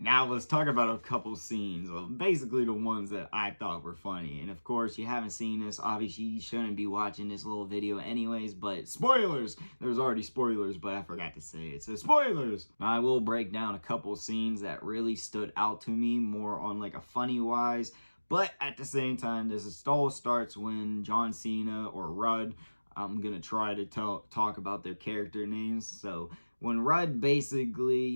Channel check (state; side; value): inverted; both; correlation -1.00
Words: Now let's talk about a couple scenes, basically the ones that I thought were funny. And of course, you haven't seen this, obviously you shouldn't be watching this little video anyways, but spoilers! There's already spoilers, but I forgot to say it, so spoilers! I will break down a couple scenes that really stood out to me, more on like a funny wise, but at the same time, this all starts when John Cena or Rudd, I'm gonna try to talk about their character names, so when Rudd